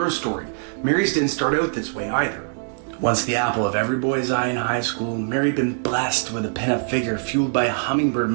story, Mary's didn't start out this way either. Once the apple of every boy's eye in high school, Mary had been blessed with a pinup figure fueled by a hummingbird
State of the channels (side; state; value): left; silent; digital silence